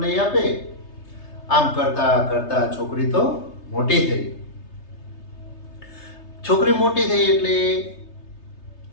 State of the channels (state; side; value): late; right; 3.3 ms